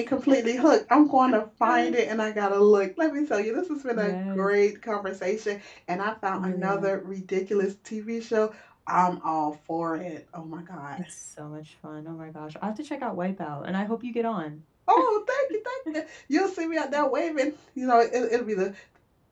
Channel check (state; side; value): identical; both; correlation 1.00